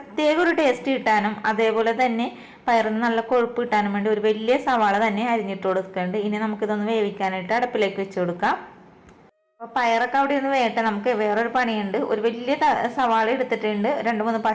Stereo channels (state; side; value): identical; both; correlation 1.00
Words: ഒരു ടേസ്റ്റ് കിട്ടാനും അതേപോലെ തന്നെ പയറിന് നല്ല കൊഴുപ്പ് കിട്ടാനും വേണ്ടി ഒരു വലിയ സവാള തന്നെ അരിഞ്ഞിട്ട് കൊടുക്കുന്നുണ്ട്. ഇനി നമുക്കിതൊന്ന് വേവിക്കാനായിട്ട് അടുപ്പിലേക്ക് വെച്ച് കൊടുക്കാം. അപ്പോൾ പയറൊക്കെ അവിടെ ഒന്ന് വേട്ടെ. നമുക്ക് വേറൊരു പണിയുണ്ട്. ഒരു വലിയ സവാള എടുത്തിട്ടുണ്ട്, 2-3